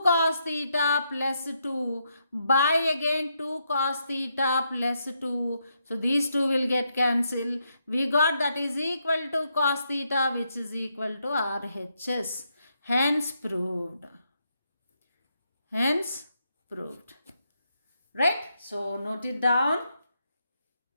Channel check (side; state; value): both; inverted; correlation -0.80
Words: cos theta plus 2 by again 2 cos theta plus 2. So these two will get cancelled. We got that is equal to cos theta, which is equal to RHS. Hence proved. Hence proved. Right? So note it down.